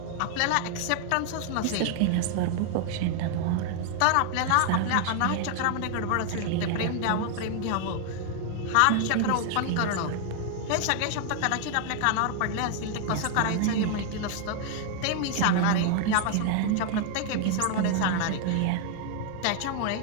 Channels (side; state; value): both; different; correlation 0.00